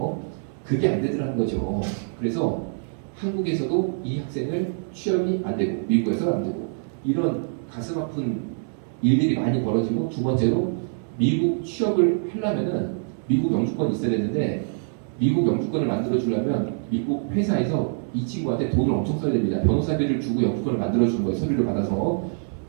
그게 안 되더라는 거죠. 그래서 한국에서도 이 학생을 취업이 안 되고 미국에서는 안 되고 이런 가슴 아픈 일들이 많이 벌어지고 두 번째로 미국 취업을 하려면은 미국 영주권이 있어야 되는데 미국 영주권을 만들어 주려면 미국 회사에서 이 친구한테 돈을 엄청 써야 됩니다. 변호사비를 주고 영주권을 만들어 주는 거예요. 서류를 받아서.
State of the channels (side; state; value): left; silent; 62 dB below the other